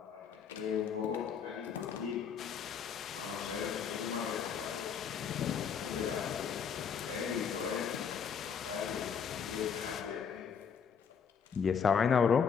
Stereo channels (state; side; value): quieter; right; 7.0 dB